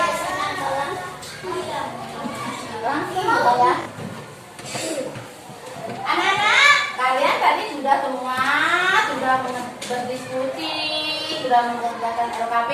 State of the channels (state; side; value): identical; both; correlation 1.00